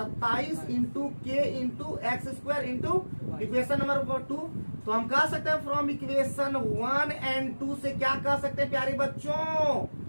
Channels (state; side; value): inverted; both; correlation -1.00